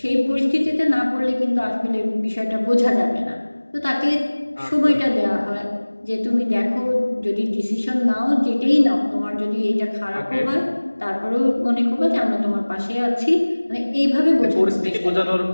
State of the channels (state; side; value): inverted; both; correlation -1.00